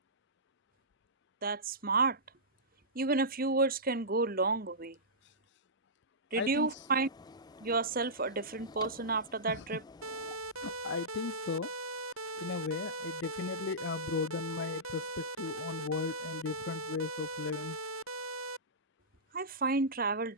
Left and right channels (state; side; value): normal; both; correlation -0.17